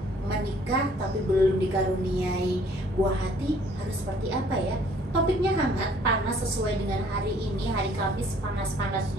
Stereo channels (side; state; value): both; normal; correlation 0.59